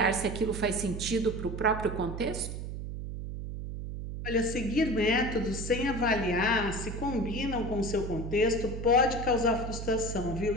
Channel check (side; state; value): right; noise; hum, 6 dB below the sound